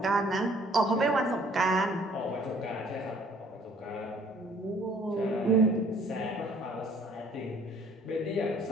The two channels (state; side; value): normal; both; correlation 0.57